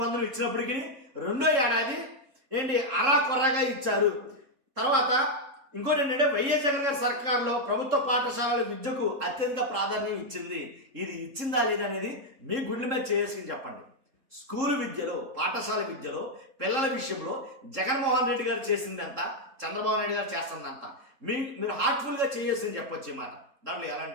ఇచ్చినప్పటికీ రెండో ఏడాది అరాకొర్రగా ఇచ్చారు. తర్వాత ఇంకోటి ఏంటంటే వైఎస్ జగన్ గారి సర్కారులో ప్రభుత్వ పాఠశాలల విద్యకు అత్యధిక ప్రాధాన్యం ఇచ్చింది. ఇది ఇచ్చిందా లేదా అనేది మీ గుండెల మీద చేసుకుని చెప్పండి. స్కూలు విద్యలో పాఠశాల విద్యలో పిల్లల విషయంలో జగన్మోహన్ రెడ్డి గారు చేసింది ఎంత, చంద్రబాబు నాయుడు గారు చేస్తుంది అంత మీరు హార్ట్ఫుల్గా చేయాల్సింది చెప్పొచ్చు ఈ మాట. దాంట్లో ఎలాంటి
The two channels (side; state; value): left; late; 3.7 ms